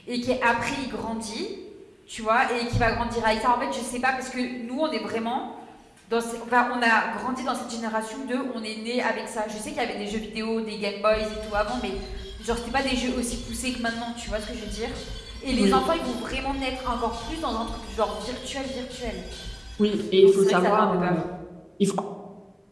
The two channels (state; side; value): identical; both; correlation 1.00